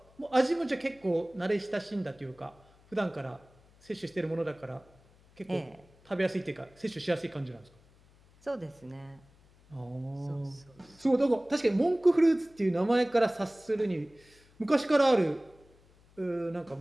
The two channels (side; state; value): left; noise; hum, 29 dB below the sound